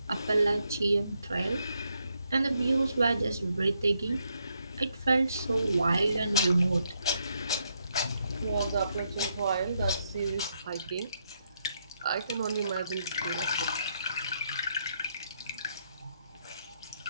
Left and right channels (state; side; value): inverted; both; correlation -0.78